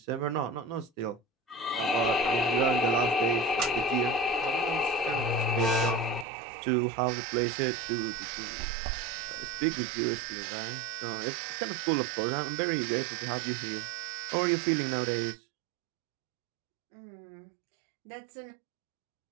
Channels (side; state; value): left; drops out; at 6.2 s